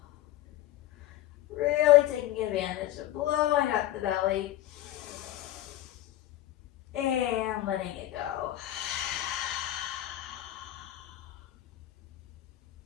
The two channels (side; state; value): right; quieter; 14.4 dB